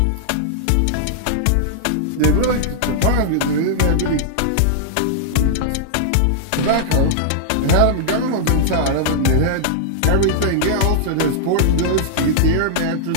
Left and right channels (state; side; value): different; both; correlation -0.01